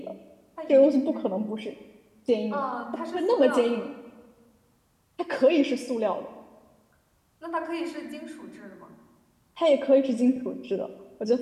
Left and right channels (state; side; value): identical; both; correlation 1.00